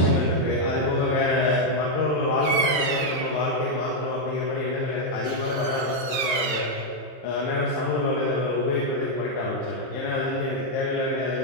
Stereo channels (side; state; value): right; late; 22 ms